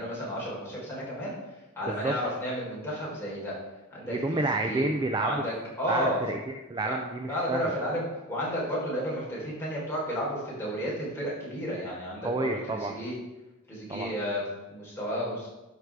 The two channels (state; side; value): normal; both; correlation 0.28